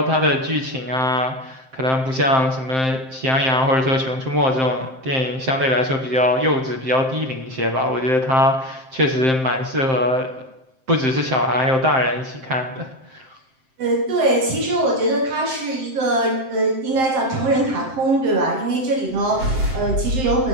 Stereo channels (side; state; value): left; late; 7.7 ms